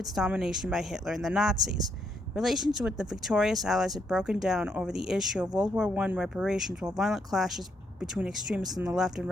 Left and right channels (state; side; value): normal; both; correlation 0.76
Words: domination by Hitler and the Nazis. Relations with the victorious Allies had broken down over the issue of World War I reparations, while violent clashes between extremists on the left and